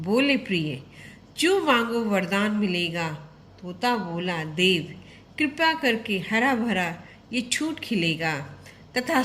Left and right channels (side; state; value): both; identical; correlation 1.00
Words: प्रिय, जो मांगो वरदान मिलेगा। तोता बोला, देव कृपा करके हरा भरा ये छूट खिलेगा।